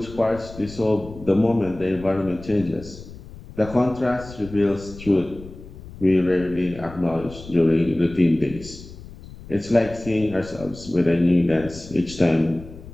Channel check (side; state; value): left; noise; rumble, 16 dB below the sound